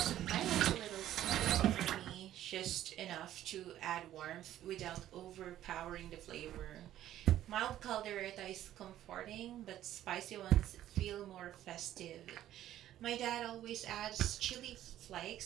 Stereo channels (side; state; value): left; quieter; 12.6 dB